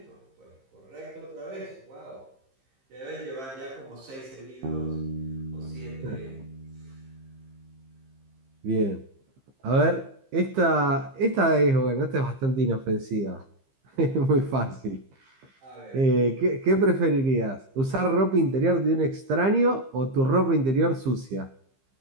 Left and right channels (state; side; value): late; left; 15 ms